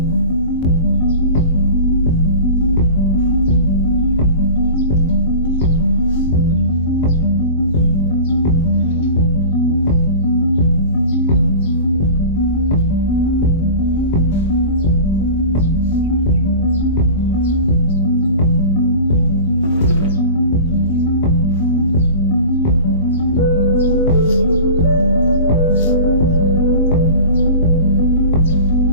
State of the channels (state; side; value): inverted; both; correlation -0.37